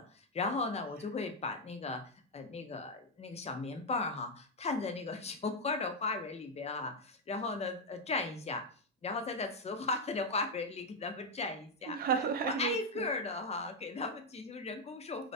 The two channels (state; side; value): normal; both; correlation 0.03